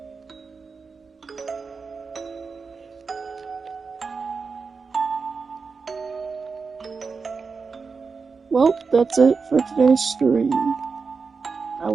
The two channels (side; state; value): left; quieter; 4.9 dB